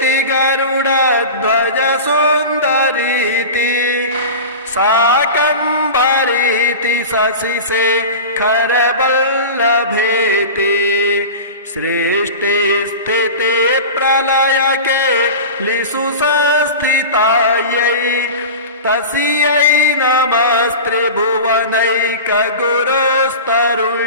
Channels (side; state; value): both; inverted; correlation -0.31